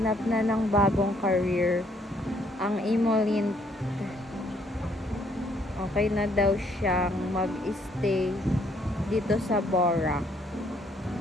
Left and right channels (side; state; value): both; normal; correlation 0.67